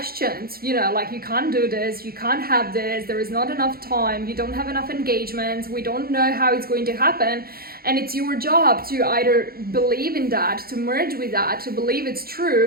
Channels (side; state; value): left; late; 0.44 ms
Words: like you can't do this, you can't have this, there is not enough time, you don't have enough engagements, we don't know how it's going to happen. And it's your job to either believe in that, to merge with that, to believe it's